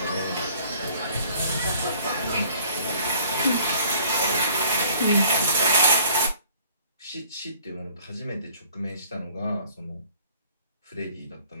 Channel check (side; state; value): both; inverted; correlation -0.55